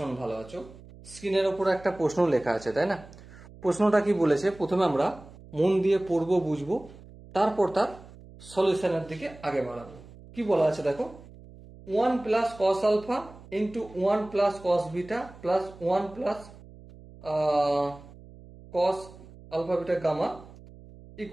ভালো আছো। স্ক্রিনের ওপরে একটা প্রশ্ন লেখা আছে, তাই না? প্রশ্নটা কি বলেছে, প্রথমে আমরা মন দিয়ে পড়বো, বুঝবো, তারপর তার সলিউশনের দিকে আগে বাড়াবো। কি বলা আছে দেখো, 1 plus cos alpha into 1 plus cos beta plus 1 plus cos alpha beta gamma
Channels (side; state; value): right; noise; hum, 20 dB below the sound